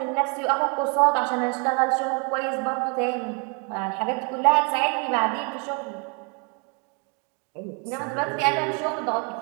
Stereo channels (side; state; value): left; quieter; 35.3 dB